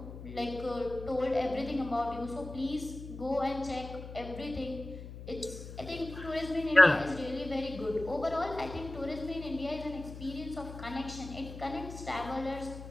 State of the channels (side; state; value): left; noise; hum, 11 dB below the sound